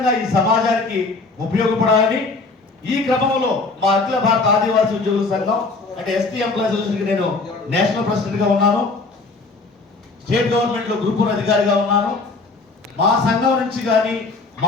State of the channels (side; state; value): right; quieter; 3.7 dB